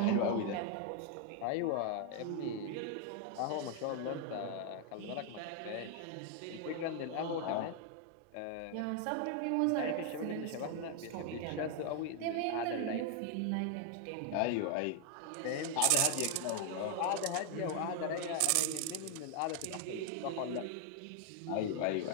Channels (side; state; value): both; different; correlation 0.00